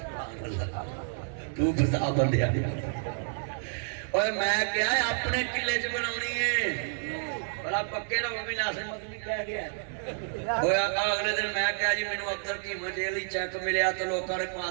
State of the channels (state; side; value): silent; left; 58 dB below the other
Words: तू बता बंदे और मैं क्या है अपने किले च बनानी है भला पक्के ना भी नासिर मदनी कह गया होया अगले दिन मैं क्या जी मैनू अब्दुल कीमा जेल चेक मिलया तो लोगों ने